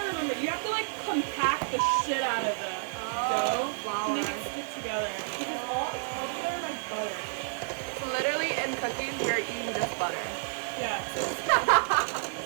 remember. You have to like compact the shit out of the dough to make it stick together. Because it's held together by butter. So literally in cookies, we're eating this butter. Yeah.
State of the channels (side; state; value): left; silent; digital silence